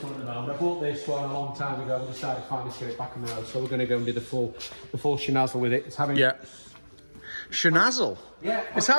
one at the moment. I bought this one a long time ago and decided to finally get it back on the road. So we're going to go and do the full shenazzle with it. It's having Shenazzle. Yeah. It's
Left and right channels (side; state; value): both; inverted; correlation -1.00